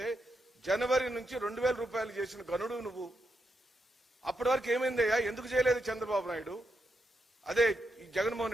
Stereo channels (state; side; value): normal; both; correlation 0.83